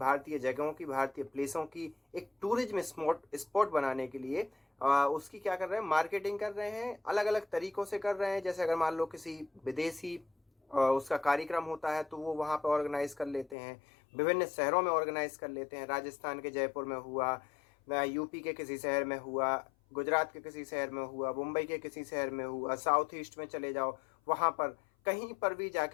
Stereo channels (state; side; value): drops out; right; at 13.6 s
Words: जगहों की, भारतीय प्लेसों की एक टूरिज्म स्पॉट बनाने के लिए उसकी क्या कर रहे हैं, मार्केटिंग कर रहे हैं, अलग अलग तरीकों से कर रहे हैं। जैसे अगर मान लो किसी विदेशी उसका कार्यक्रम होता है तो वो वहाँ पर ऑर्गेनाइज कर लेते हैं, विभिन्न शहरों में ऑर्गेनाइज कर लेते हैं। राजस्थान के जयपुर में हुआ, यूपी के किसी शहर में हुआ, गुजरात के किसी शहर में हुआ, मुंबई के किसी शहर में हुआ, साउथ ईस्ट में चले जाओ, वहाँ पर कहीं पर भी